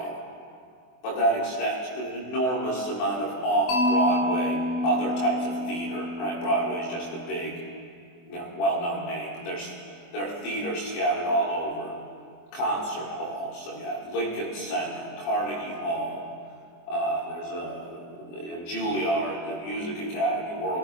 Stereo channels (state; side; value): late; right; 24 ms